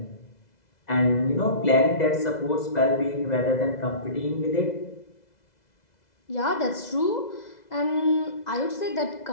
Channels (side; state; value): right; late; 2.0 ms